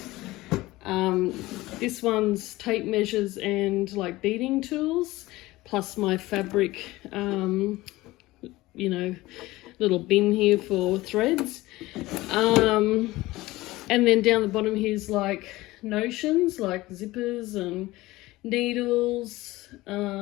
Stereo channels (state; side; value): quieter; right; 18.8 dB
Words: This one's tape measures and like beading tools, plus my fabric, you know, little bin here for threads. And then down the bottom here's like notions, like zippers and needles,